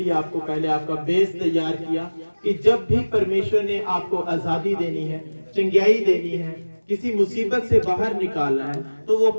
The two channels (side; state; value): both; inverted; correlation -1.00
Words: आपको पहले आपका बेस तैयार किया कि जब भी परमेश्वर ने आपको आजादी देनी है, चंगाई देनी है, किसी मुसीबत से बाहर निकालना है, तो वो